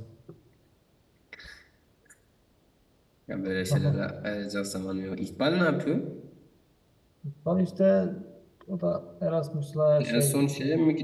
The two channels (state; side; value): identical; both; correlation 1.00